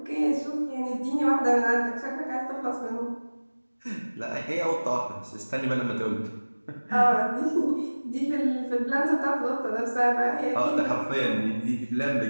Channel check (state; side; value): inverted; both; correlation -1.00